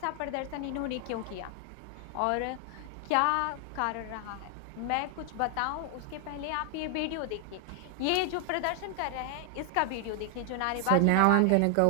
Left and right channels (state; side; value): different; both; correlation 0.00